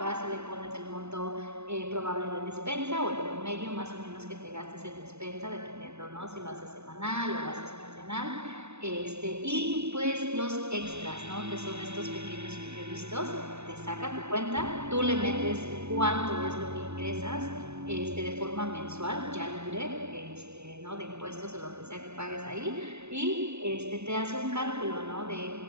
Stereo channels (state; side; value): late; left; 0.81 ms